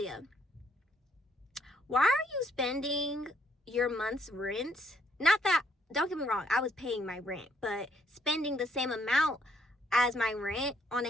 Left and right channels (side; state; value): both; normal; correlation 0.69